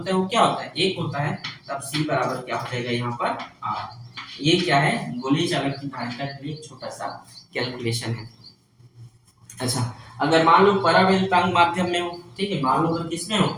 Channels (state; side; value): identical; both; correlation 1.00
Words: है वो क्या होता है, 1 होता है, तब C बराबर क्या हो जाएगा यहाँ पर R। ये क्या है, गोलीय चालक की धारिता के लिए छोटा सा कैलकुलेशन है। अच्छा, अगर मान लो परावैद्युतांक माध्यम में हो, ठीक है, मान लो अगर किस में हो,